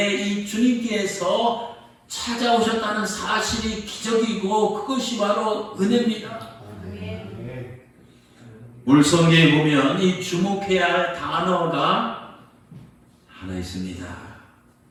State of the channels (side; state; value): both; identical; correlation 1.00